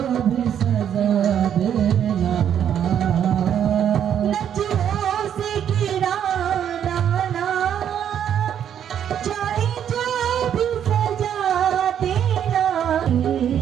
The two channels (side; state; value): left; quieter; 9.3 dB